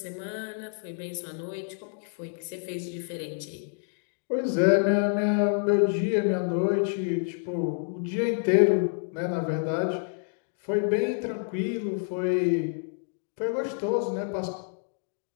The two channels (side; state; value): right; silent; digital silence